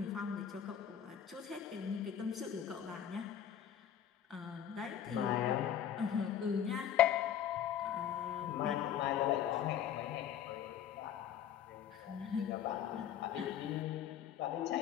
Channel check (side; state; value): right; quieter; 9.5 dB